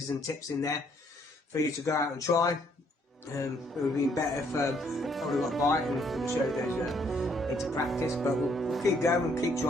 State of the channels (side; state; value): both; normal; correlation 0.67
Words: and tips in there for you to go out and try. It would have been better if I would have got a bite and showed those into practice, but we'll keep going and keep